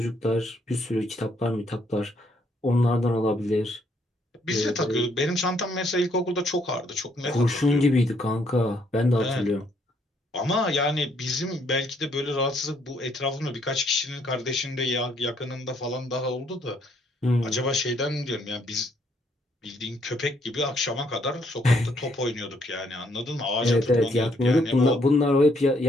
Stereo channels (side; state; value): both; normal; correlation 0.70